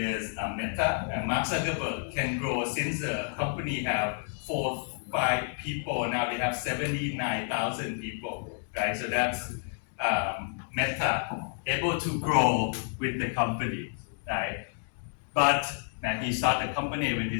Meta, and Mark Zuckerberg can grow since the company have 4-5 people. Now they have 79,000 people, right? So that's Meta able to grow with the company, right? But now he started the company when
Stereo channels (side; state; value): right; silent; 58 dB below the other